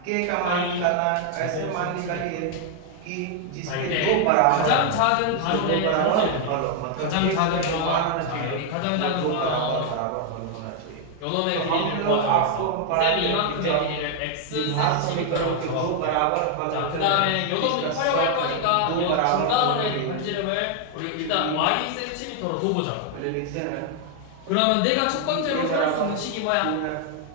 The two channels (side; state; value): both; different; correlation 0.00